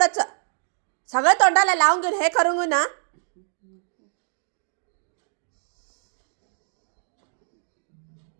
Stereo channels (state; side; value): silent; left; digital silence